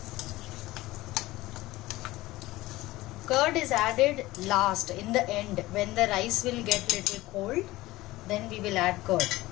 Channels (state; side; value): quieter; right; 18.3 dB